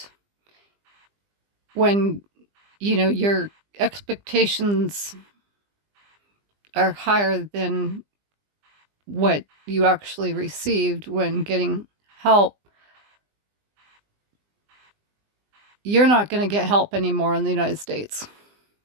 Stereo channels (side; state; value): left; late; 20 ms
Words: when, your expectations are higher than what you actually received when getting help, you're not going to get help anymore in the United States.